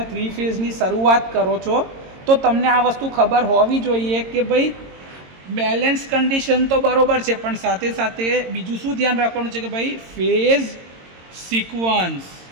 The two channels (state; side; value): late; left; 22 ms